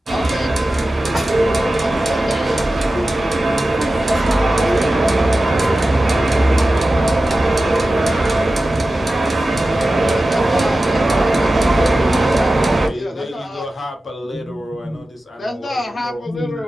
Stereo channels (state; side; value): normal; both; correlation 0.94